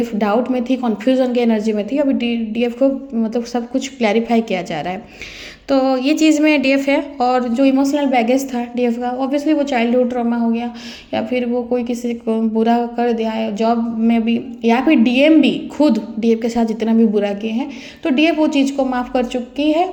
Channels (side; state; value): both; identical; correlation 1.00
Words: डाउट में थी, कन्फ्यूजन की एनर्जी में थी, अभी डीएफ को मतलब सब कुछ क्लैरिफाई किया जा रहा है। तो ये चीज़ में डीएफ है। और जो इमोशनल बैगेज था डीएफ का, ऑब्वियसली वो चाइल्डहुड ट्रॉमा हो गया या फिर वो कोई किसी को बुरा कर दिया है जॉब में भी, या फिर डीएम भी खुद डीएफ के साथ जितना भी बुरा किए हैं, तो डीएफ वो चीज़ को माफ़ कर चुकी है।